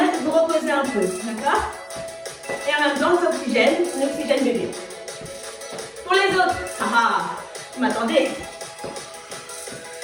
de vous reposer un peu. D'accord? Et en même temps, on oxygène bébé. Pour les autres, vous m'attendez.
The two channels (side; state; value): both; identical; correlation 1.00